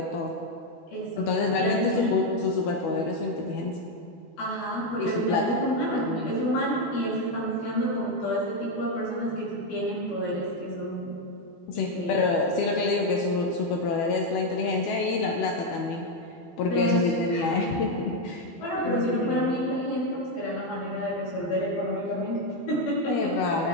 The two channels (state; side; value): late; right; 12 ms